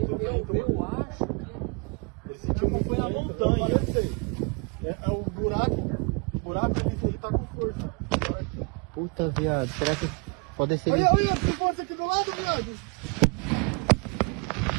bem, eu acho. Ele sentiu muito foi na montanha, eu sei. É o buraco que ele tá com força. Puta, viado, será que pode ser... Olha, tem força aqui do lado, viado.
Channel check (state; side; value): quieter; left; 32.1 dB